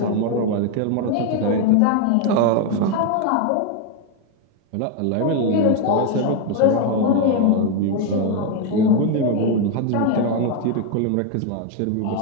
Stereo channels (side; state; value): both; different; correlation 0.01